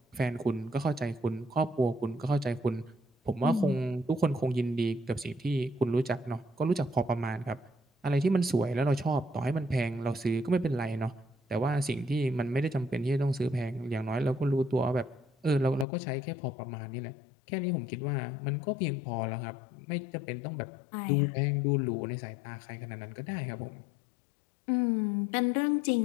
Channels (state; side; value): drops out; right; at 15.9 s